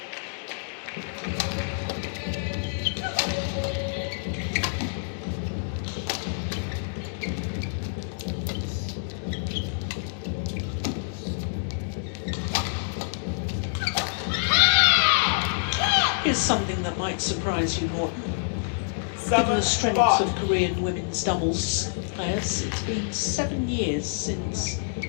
Here's something that might surprise you, Morten. Given the strength of Korean women's doubles players, it's been 7 years since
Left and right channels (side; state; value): right; silent; digital silence